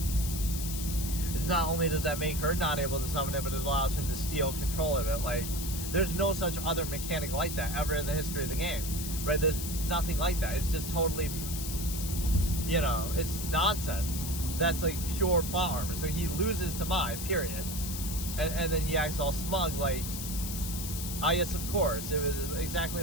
It's not only does that make her not able to summon it, but it allows him to steal control of it. Like, there's no such other mechanic like that ever in the history of the game, right? There's nothing like that. It's just totally, you know, it's nonsense. That's like pure plot armor. So he loses to Mai, period. And then he acts all smug, like, ah, yes, of course, it was exactly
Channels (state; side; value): noise; left; hiss, 6 dB below the sound